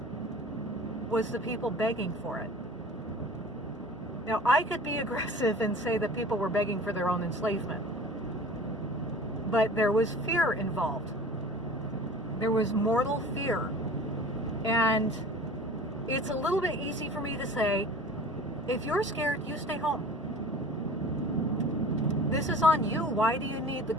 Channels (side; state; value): both; normal; correlation 0.42